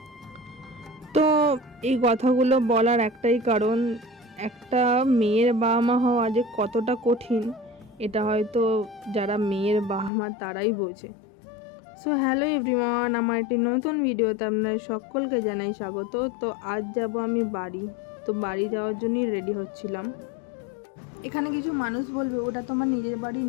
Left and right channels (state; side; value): drops out; right; at 10.1 s